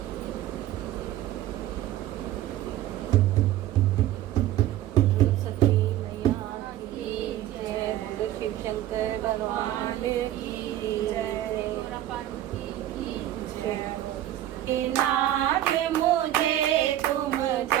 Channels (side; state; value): left; quieter; 13.2 dB